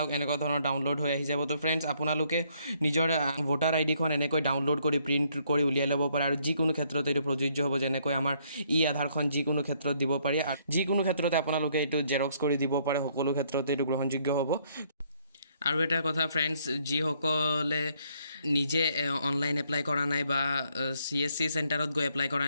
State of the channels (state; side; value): inverted; both; correlation -0.69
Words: এনেকুৱা ধৰণৰ ডাউনলোড হৈ আহি যাব তো ফ্ৰেণ্ডছ আপোনালোকে নিজৰ ভোটাৰ আইডিখন এনেকৈ ডাউনলোড কৰি প্ৰিণ্ট কৰি উলিয়াই ল'ব পাৰে আৰু যিকোনো ক্ষেত্ৰত এইটো প্ৰযোজ্য হ'ব যেনেকৈ আমাৰ আধাৰখন যিকোনো ক্ষেত্ৰত দিব পাৰি আৰু যিকোনো ক্ষেত্ৰতে আপোনালোকে এইটো জেৰক্স কৰি দিব পাৰে সকলো ক্ষেত্ৰতে এইটো গ্ৰহণযোগ্য হ'ব আৰু এটা কথা ফ্ৰেণ্ডছ যিসকলে নিজে অনলাইন এপ্লাই কৰা নাই বা CSC চেণ্টাৰত গৈ এপ্লাই কৰা